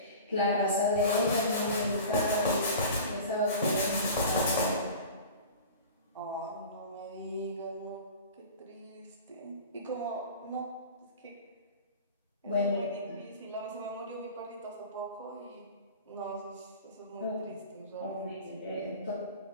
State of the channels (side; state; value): both; inverted; correlation -0.37